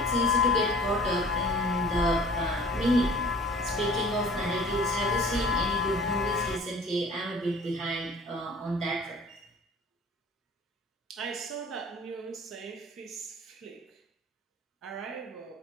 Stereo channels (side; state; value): both; normal; correlation 0.47